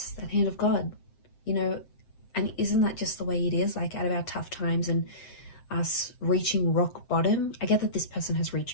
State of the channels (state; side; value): late; right; 7.7 ms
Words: that hand of God, and isn't that just the way it is? Like out of our tough times and us reaching rock bottom. I get that this person has